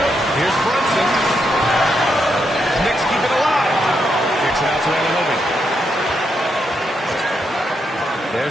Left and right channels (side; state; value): both; normal; correlation 0.81